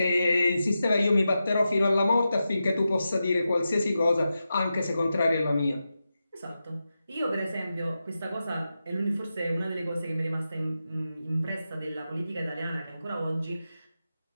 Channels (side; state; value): both; inverted; correlation -0.90